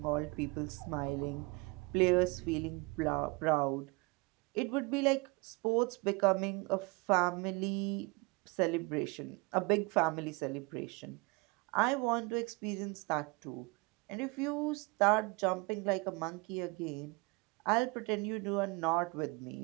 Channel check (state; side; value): quieter; left; 27.4 dB